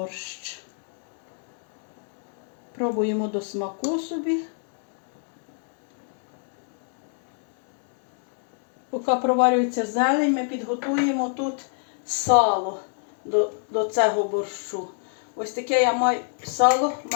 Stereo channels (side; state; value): right; silent; 61 dB below the other